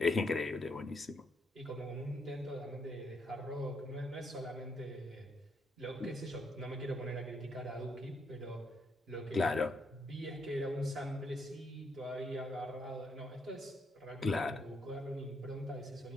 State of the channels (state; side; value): normal; both; correlation 0.75